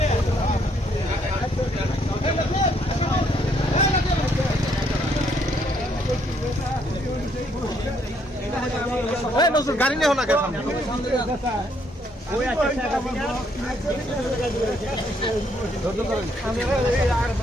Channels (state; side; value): normal; both; correlation 0.70